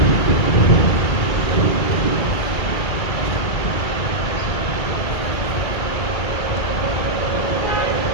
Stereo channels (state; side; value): late; right; 2.1 ms